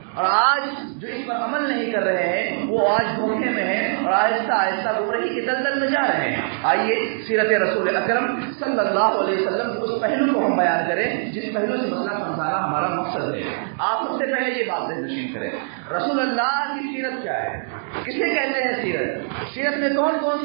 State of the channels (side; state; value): left; silent; digital silence